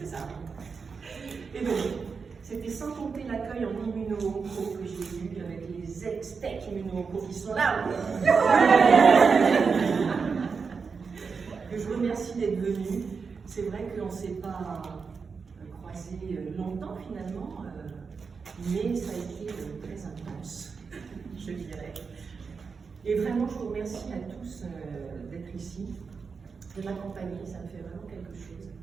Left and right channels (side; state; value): left; quieter; 5.3 dB